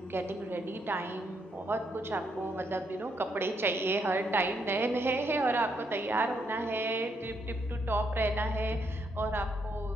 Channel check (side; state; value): both; normal; correlation 0.76